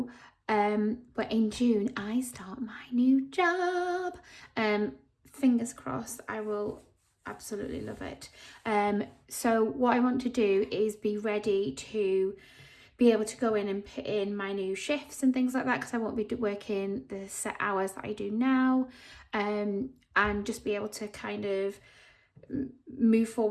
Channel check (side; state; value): both; identical; correlation 1.00